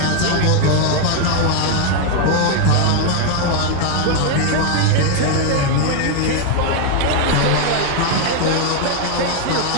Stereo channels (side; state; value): both; different; correlation 0.00